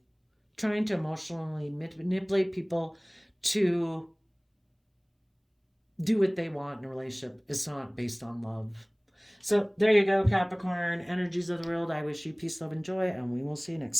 trying to emotionally manipulate people to do what they want in a relationship. It's not based on love. So there you go, Capricorn, energies of the world. I wish you peace, love, and joy, and we will see you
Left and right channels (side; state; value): both; identical; correlation 1.00